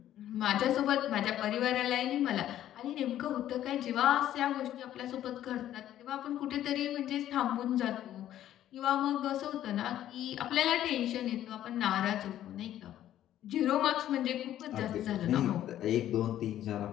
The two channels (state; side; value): quieter; right; 12.1 dB